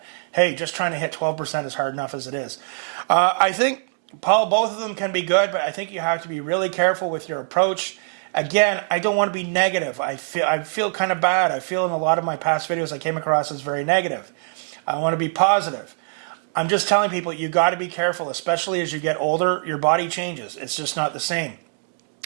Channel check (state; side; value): silent; left; 64 dB below the other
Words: Hey, just trying to hit 12% is hard enough as it is. I think, Paul, both of them can be good, but I think you have to be really careful with your approach. Again, I don't want to be negative. I feel kind of bad. I feel in a lot of my past videos I came across as very negative. I want to be positive. I'm just telling people you got to be careful, especially as you get older. Your body changes. It's just not the same.